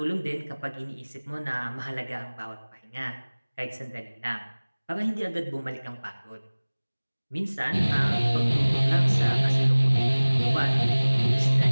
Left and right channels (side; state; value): both; inverted; correlation -1.00